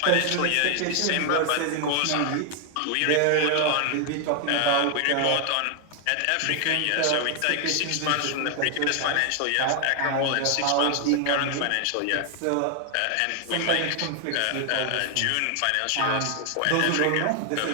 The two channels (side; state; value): both; different; correlation 0.00